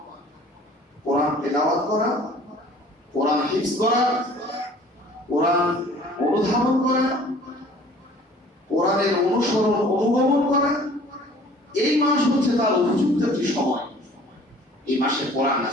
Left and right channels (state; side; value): normal; both; correlation 0.51